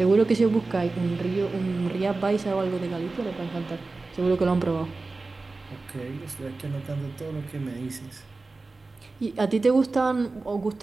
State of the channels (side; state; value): left; quieter; 3.6 dB